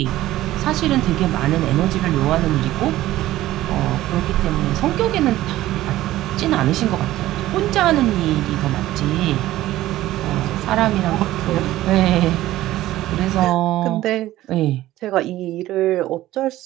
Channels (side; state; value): left; quieter; 15.3 dB